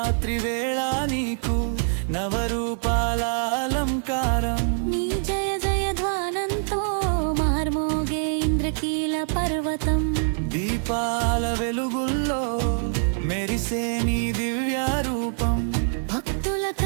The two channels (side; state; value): left; silent; 62 dB below the other